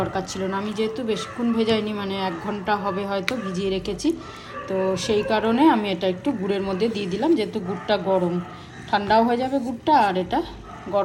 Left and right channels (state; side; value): identical; both; correlation 1.00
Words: ছিল না। আমি যেহেতু বেশিক্ষণ ভেজাইনি, মানে 1 ঘন্টা হবে হয়তো ভিজিয়ে রেখেছি, তো সেই কারণে আমি এটা একটু গুড়ের মধ্যে দিয়ে দিলাম। যেহেতু গুড়টা গরম, ঠান্ডাও হয়ে যাবে গুড়টা, আর এটা